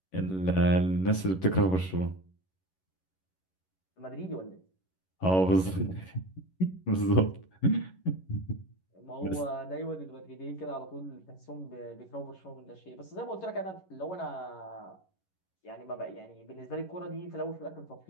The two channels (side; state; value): right; late; 11 ms